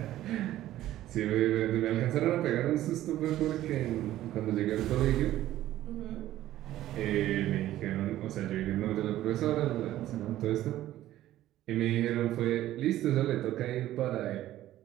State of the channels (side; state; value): left; quieter; 14.0 dB